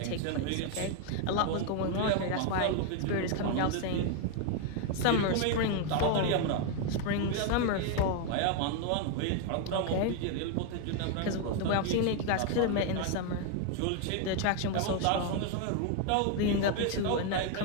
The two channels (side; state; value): both; different; correlation 0.01